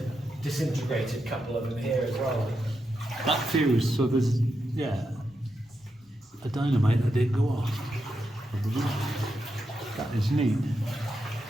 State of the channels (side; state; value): both; normal; correlation 0.85